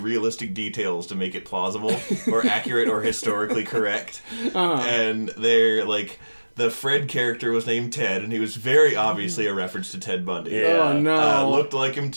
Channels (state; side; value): inverted; both; correlation -1.00